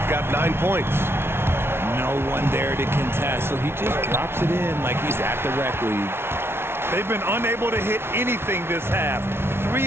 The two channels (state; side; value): late; left; 0.12 ms